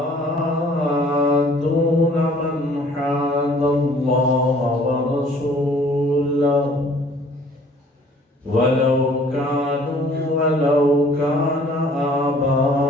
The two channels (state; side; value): normal; both; correlation 0.55